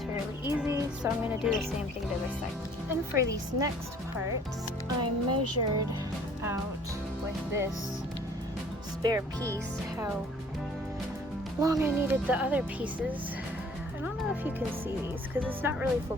fairly easy. So I'm going to do the same thing to this side. And for these next parts, I measured out with this spare piece how long I needed the other pieces. I don't know if you can see these because it's not really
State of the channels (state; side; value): normal; both; correlation 0.55